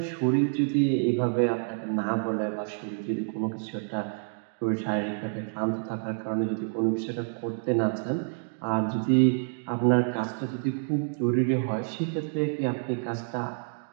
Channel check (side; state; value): left; silent; digital silence